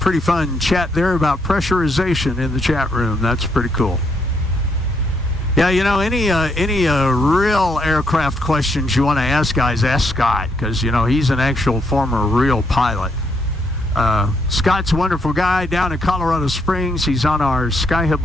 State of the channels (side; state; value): both; normal; correlation 0.75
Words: fun chat there about pressurization in the chat room. That's pretty cool. Yeah, you know, any real aircraft questions you want to ask, guys, ask Scott, because, you know, he's an actual former real pilot. Scott's a wonderful guy down in Colorado Springs. He's on our